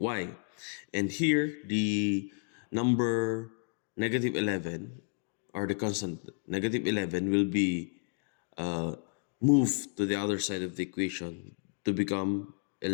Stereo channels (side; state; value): right; silent; 57 dB below the other